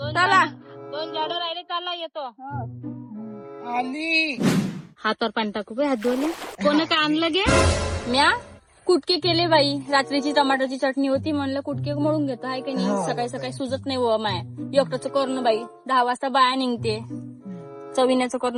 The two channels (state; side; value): identical; both; correlation 1.00